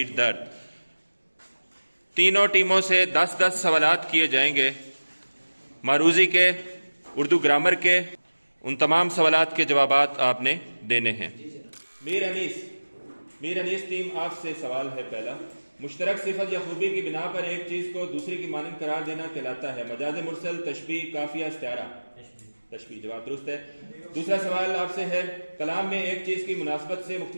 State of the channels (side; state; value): both; inverted; correlation -1.00